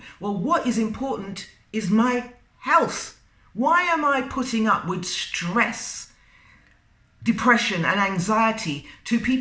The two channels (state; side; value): identical; both; correlation 1.00